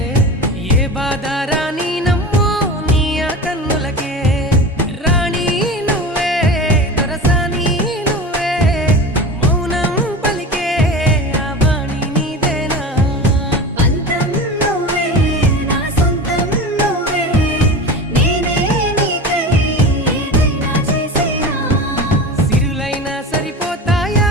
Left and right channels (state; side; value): normal; both; correlation 0.30